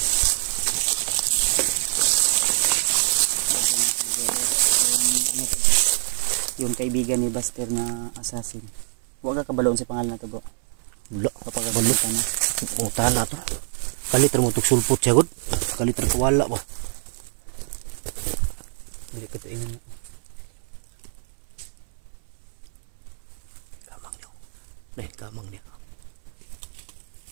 Yung kaibigan ni Buster na assassin. Huwag ka kabaloon sa pangalan na to bro. Wala. Kapagabalot ka na. O tana to. Kaliter mo tuk sulpot siya god. Kaliter kawala ba. Hindi ko ito inan. Kamang niyo. Nah, kamang niya.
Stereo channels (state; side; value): silent; left; 62 dB below the other